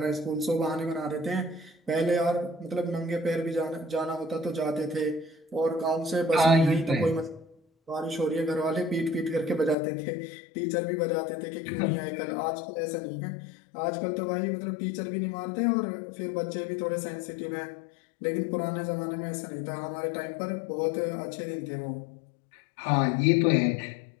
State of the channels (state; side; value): drops out; right; at 9.8 s